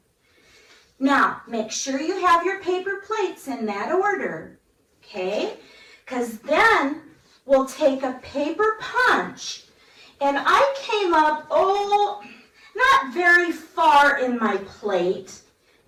Now, make sure you have your paper plates in that order, okay? Because then we'll take a paper punch. And I came up, not very far in my plate.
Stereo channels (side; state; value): both; identical; correlation 1.00